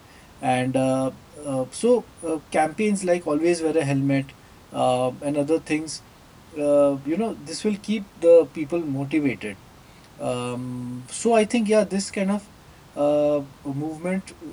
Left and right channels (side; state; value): both; identical; correlation 1.00